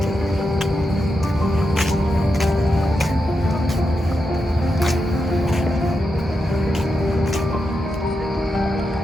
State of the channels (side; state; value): both; normal; correlation 0.87